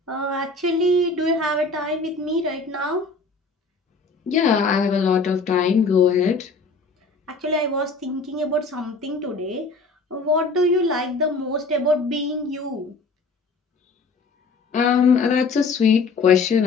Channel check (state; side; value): quieter; right; 3.9 dB